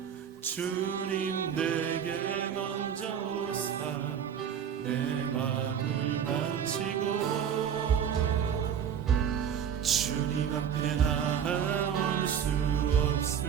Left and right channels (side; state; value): left; quieter; 8.3 dB